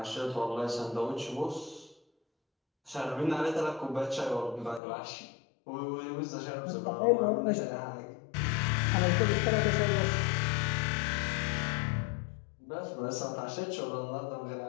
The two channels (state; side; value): drops out; right; at 4.8 s